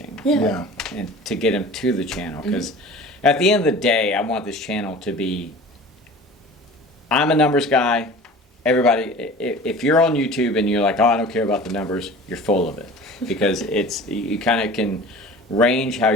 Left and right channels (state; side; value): normal; both; correlation 0.40